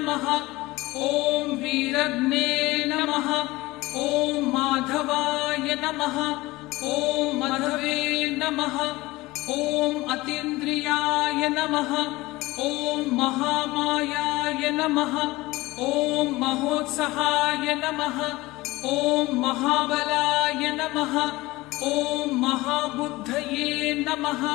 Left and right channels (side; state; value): right; quieter; 19.9 dB